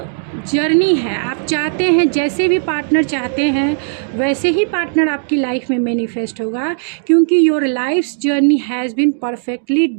जर्नी है, आप चाहते हैं जैसे भी पार्टनर चाहते हैं वैसे ही पार्टनर आपकी लाइफ में मैनिफेस्ट होगा, क्योंकि your life's journey has been perfectly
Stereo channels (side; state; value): left; silent; digital silence